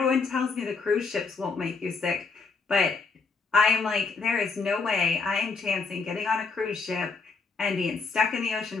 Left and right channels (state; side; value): quieter; right; 4.5 dB